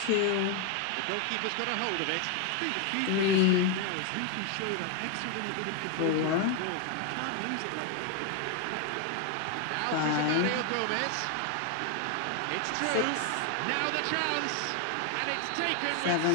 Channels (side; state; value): both; different; correlation 0.01